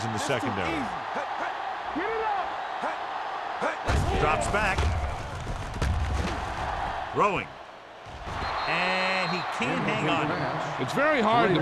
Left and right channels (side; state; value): both; identical; correlation 1.00